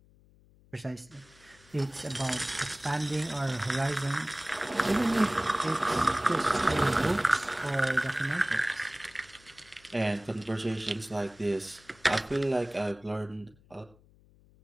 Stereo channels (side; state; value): left; noise; hum, 28 dB below the sound